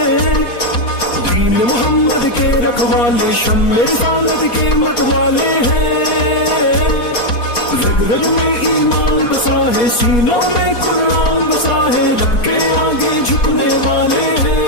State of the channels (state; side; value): late; right; 4.3 ms